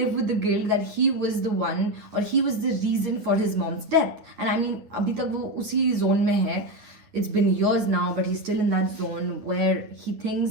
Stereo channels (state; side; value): late; left; 9.2 ms